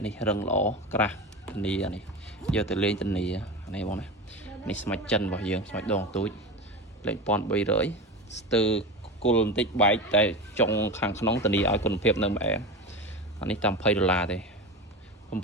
នេះរឹងល្អក្រាស់ធានានេះយកទៅលេងធានានេះបងណានេះស្មាច់ចិនរបស់យើងស្មាច់ដងទូចលេខ1300ស្ទើរគុលបន្តិចបែកតែចុងខាងក្នុងធានាឲ្យគុណភាពនៅម្អែអានេះតាម$20ទេ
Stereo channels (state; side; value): normal; both; correlation 0.25